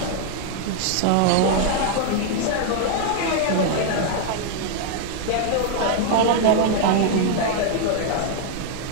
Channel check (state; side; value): different; both; correlation 0.00